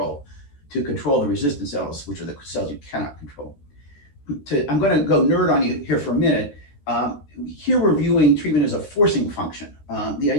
to control the resistant cells, which are the cells you cannot control. I'm going to go nerd on you here for a minute. Here we're viewing treatment as a forcing function. The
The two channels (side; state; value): right; late; 14 ms